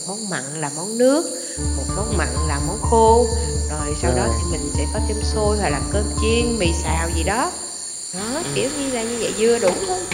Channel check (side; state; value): both; identical; correlation 1.00